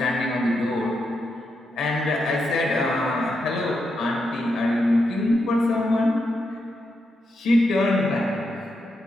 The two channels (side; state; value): both; normal; correlation 0.84